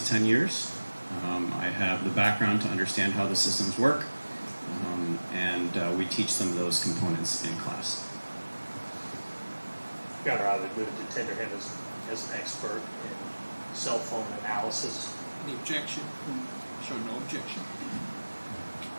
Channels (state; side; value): inverted; both; correlation -1.00